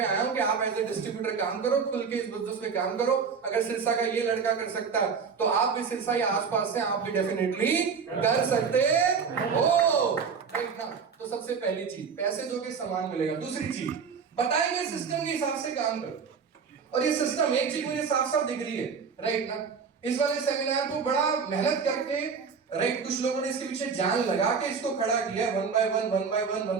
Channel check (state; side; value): quieter; left; 5.9 dB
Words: आया हूँ कि आप एज ए डिस्ट्रीब्यूटर काम करो, खुल के इस बिजनेस में काम करो। अगर सिरसा का ये लड़का कर सकता है तो आप भी सिरसा या आसपास से आप भी डेफिनेटली कर सकते हो, राइट ना? तो सबसे पहली चीज, पैसे दोगे सामान मिलेगा। दूसरी चीज, बताएंगे सिस्टम के हिसाब से काम करो, और ये सिस्टम एक चीज मुझे साफ साफ दिख रही है, राइट ना? इस वाले सेमिनार को बड़ा मेहनत करके, राइट, कुछ लोगों ने इसके पीछे जान लगा के इसको खड़ा किया, 1 by 1 1 by 1